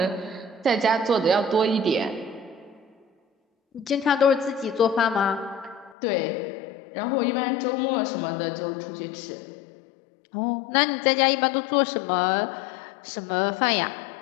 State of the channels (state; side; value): drops out; right; at 6.0 s